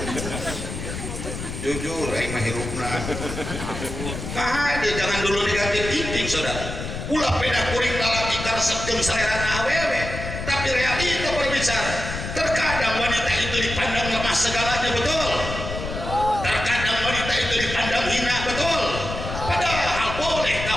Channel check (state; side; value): noise; left; rumble, 7 dB below the sound